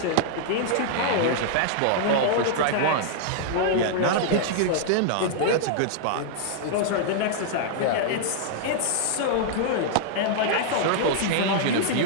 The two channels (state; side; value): different; both; correlation -0.01